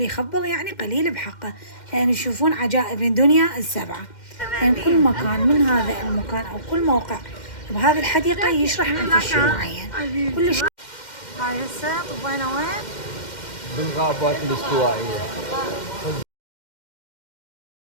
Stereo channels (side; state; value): right; late; 2.1 ms